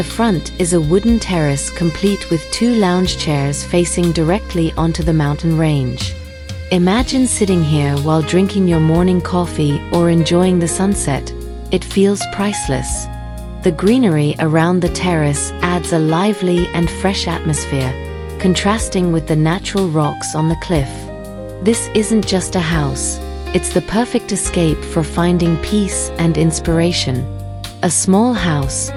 front is a wooden terrace complete with 2 lounge chairs facing directly onto the mountain range. Imagine sitting here while drinking your morning coffee or enjoying the sunset. It feels priceless. The greenery around the terrace adds a lively and fresh atmosphere, contrasting with the natural rocks on the cliff. This isn't just a house, it's the perfect escape for finding peace and inspiration. A small house,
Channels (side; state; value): both; identical; correlation 1.00